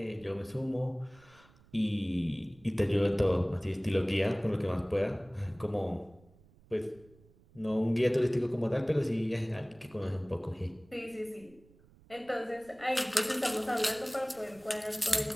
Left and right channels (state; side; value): noise; right; rumble, 27 dB below the sound